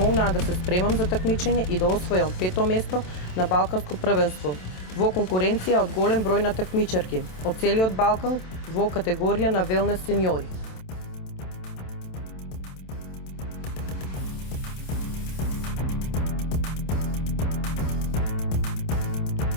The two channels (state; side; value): late; right; 27 ms